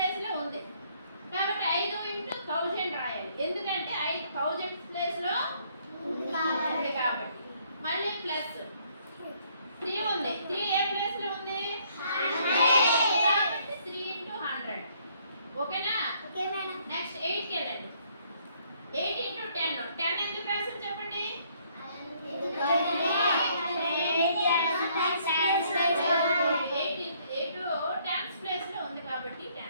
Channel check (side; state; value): both; inverted; correlation -0.66